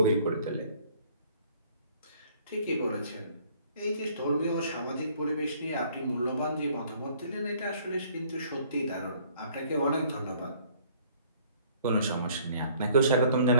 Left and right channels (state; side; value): inverted; both; correlation -0.59